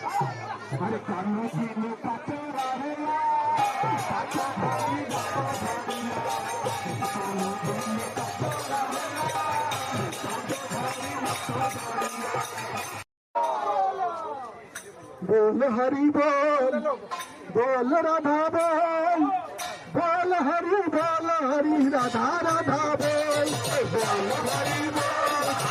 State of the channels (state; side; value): identical; both; correlation 1.00